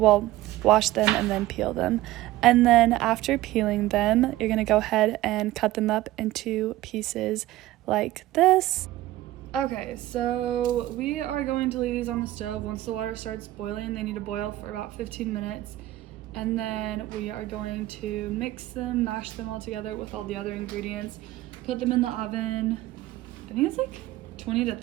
them and then peel them. And then after peeling them, you're going to go ahead and cut them up into pieces like this. Okay, so we are going to leave these on the stove. Once the water starts boiling, they need to boil for about 15 minutes. And then we are going to mix them, mash them all together with all the other ingredients. Put them in the oven, I think it's like 20 to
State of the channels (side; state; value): left; quieter; 16.2 dB